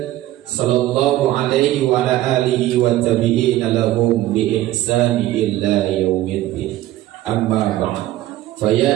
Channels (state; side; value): quieter; left; 14.9 dB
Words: sallallahu alaihi wa ala alihi wa tabi'ina lahum bi ihsani illa yaumiddin. Amma ba'd. Fa ya